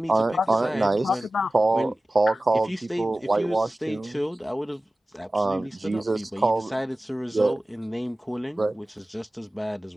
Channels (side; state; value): both; normal; correlation 0.97